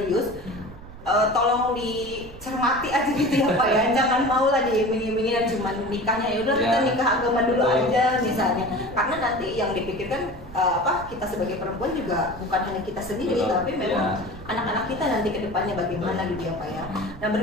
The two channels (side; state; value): right; noise; rumble, 16 dB below the sound